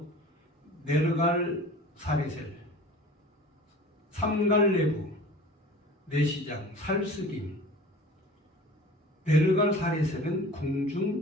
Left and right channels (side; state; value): both; normal; correlation 0.42